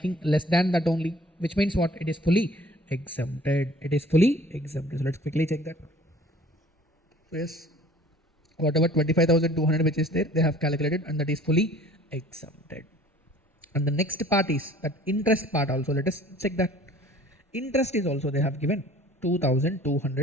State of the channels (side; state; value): both; normal; correlation 0.51